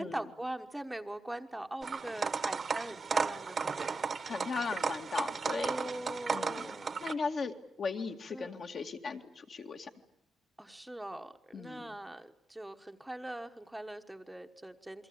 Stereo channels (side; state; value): both; normal; correlation 0.88